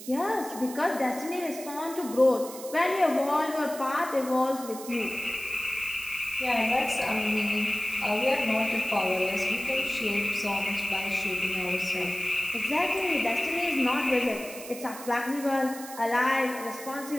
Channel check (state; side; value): noise; right; hiss, 13 dB below the sound